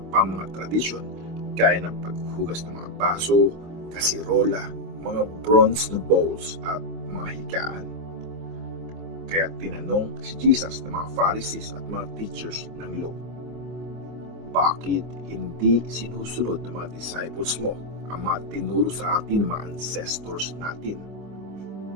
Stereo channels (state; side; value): late; left; 25 ms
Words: pang mga tradisyon gaya ng paghuhugas ng mga baso, kasirola, mga bronze na bowls at mga higaan. Kaya tinanong si Jesus ng mga Pharisees at mga teachers ng law, bakit hindi sinusunod ng mga disciples mo ang mga tinuro sa atin ng mga ancestors natin?